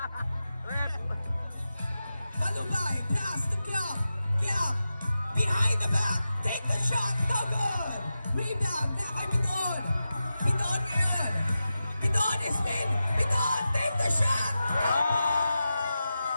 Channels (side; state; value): both; inverted; correlation -0.91